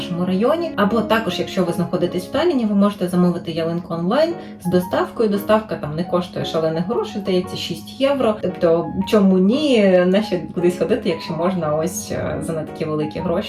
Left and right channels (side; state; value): both; identical; correlation 1.00